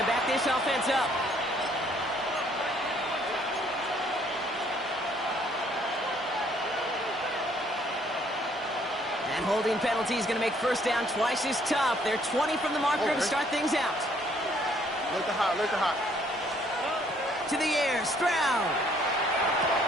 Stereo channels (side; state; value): both; normal; correlation 0.64